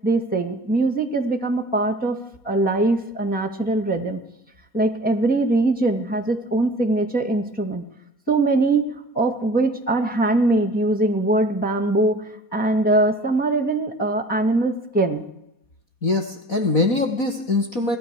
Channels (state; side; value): late; right; 4.2 ms